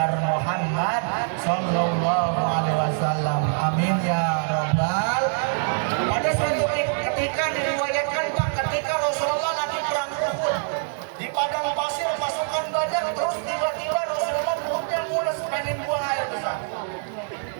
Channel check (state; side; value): silent; left; digital silence